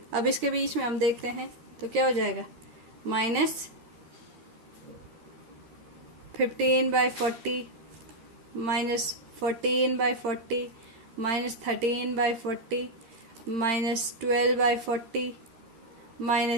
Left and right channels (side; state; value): left; late; 13 ms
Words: अब इसके बीच में हम देखते हैं तो क्या हो जाएगा, -15/40 -14/40 -13/40 -12/40